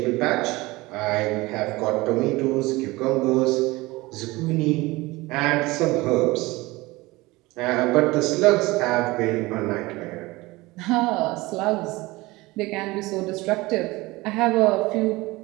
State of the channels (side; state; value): left; quieter; 21.2 dB